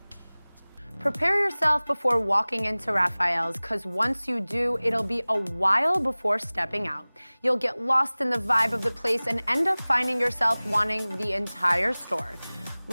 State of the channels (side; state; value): both; inverted; correlation -1.00